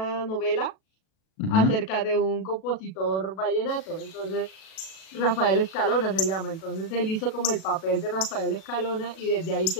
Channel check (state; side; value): late; right; 38 ms